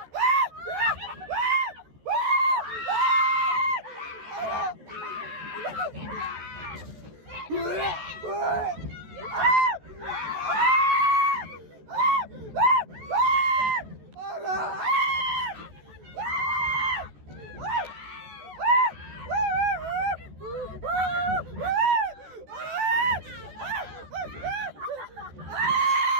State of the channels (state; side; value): late; left; 14 ms